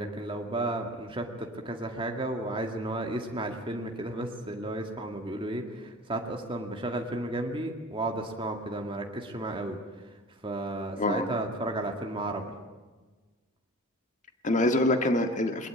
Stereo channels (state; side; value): normal; both; correlation 0.40